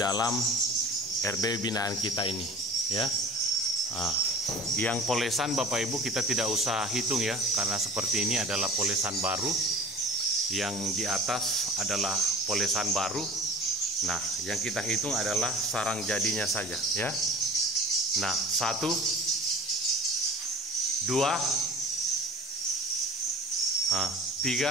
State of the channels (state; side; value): normal; both; correlation 0.41